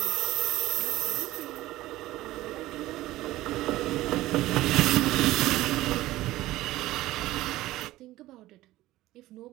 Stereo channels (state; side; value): quieter; left; 16.6 dB